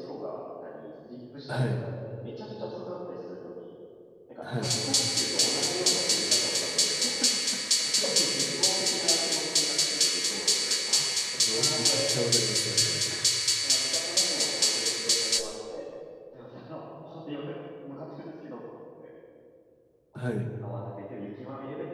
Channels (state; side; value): identical; both; correlation 1.00